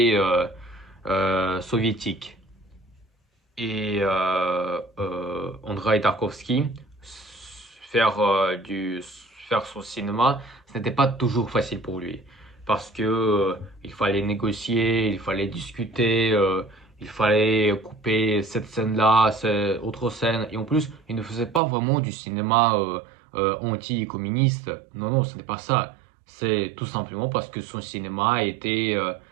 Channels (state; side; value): drops out; left; at 21.6 s